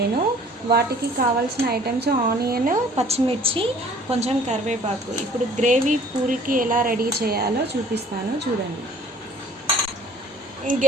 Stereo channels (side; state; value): both; normal; correlation 0.53